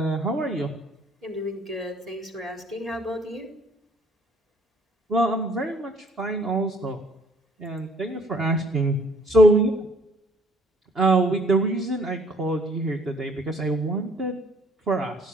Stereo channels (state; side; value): normal; both; correlation 0.59